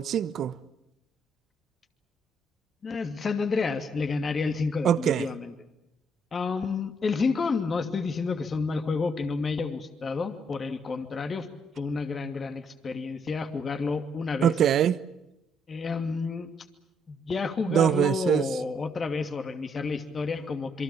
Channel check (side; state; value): both; normal; correlation 0.72